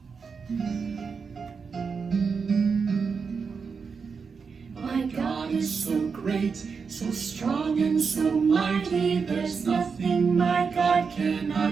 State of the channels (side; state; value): left; quieter; 5.5 dB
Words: My God is so great, so strong and so mighty, there's nothing my God